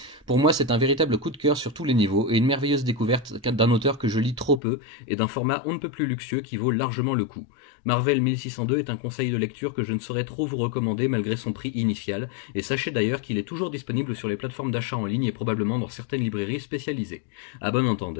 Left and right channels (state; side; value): drops out; right; at 4.6 s